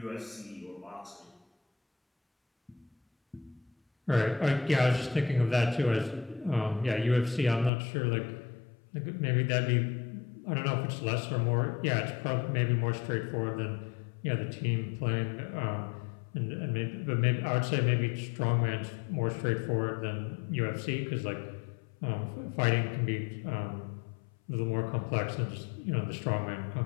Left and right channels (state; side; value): drops out; right; at 7.7 s